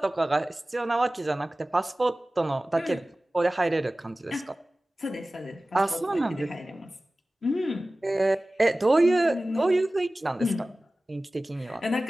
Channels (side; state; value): both; normal; correlation 0.97